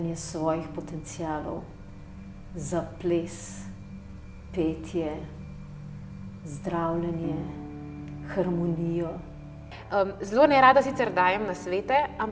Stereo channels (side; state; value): both; identical; correlation 1.00